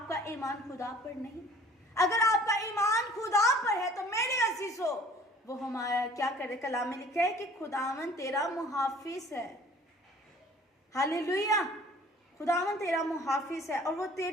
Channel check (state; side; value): normal; both; correlation 0.51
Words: ईमान खुदा पर नहीं? अगर आपका ईमान खुदा पर है तो मेरे अजीजों, वो हमारा क्या करे, कलाम में लिखा है कि खुदावंद तेरा मुहाफिज है। हालेलुया। खुदावंद तेरा मुहाफिज है और वो